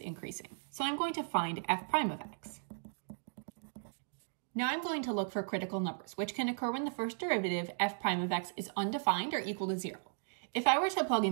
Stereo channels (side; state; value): left; silent; digital silence